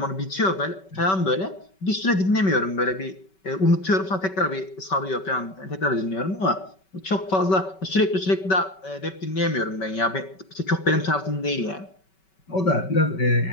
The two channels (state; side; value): late; right; 5.3 ms